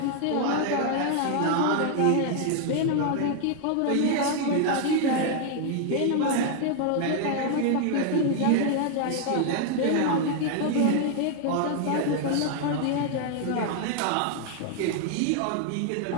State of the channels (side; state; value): both; different; correlation 0.00